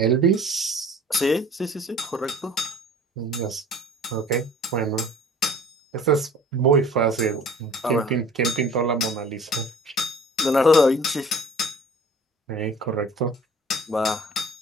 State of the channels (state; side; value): normal; both; correlation 0.48